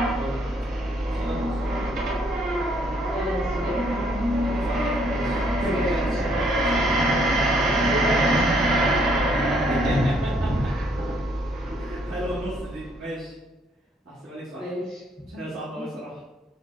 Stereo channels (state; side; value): normal; both; correlation 0.68